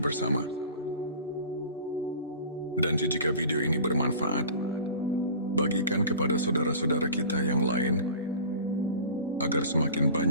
Dan jika video ini bermanfaat, bagikan kepada saudara-saudara kita yang lain, agar semakin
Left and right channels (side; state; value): both; inverted; correlation -0.39